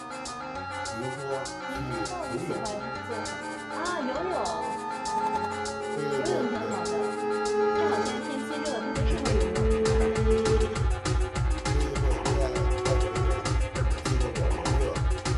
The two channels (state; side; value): identical; both; correlation 1.00